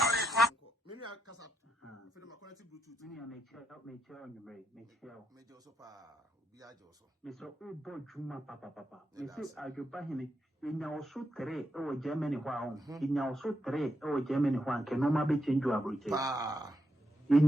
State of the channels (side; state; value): both; normal; correlation 0.81